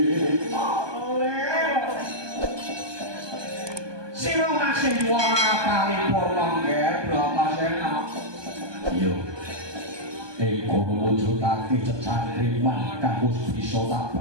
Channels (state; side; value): late; left; 1.2 ms